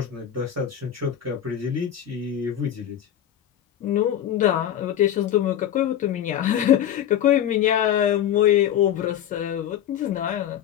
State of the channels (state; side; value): quieter; right; 10.5 dB